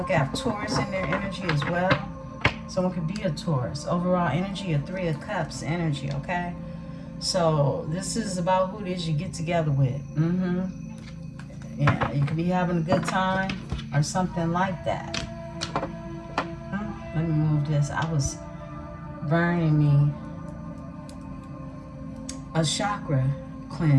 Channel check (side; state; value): both; identical; correlation 1.00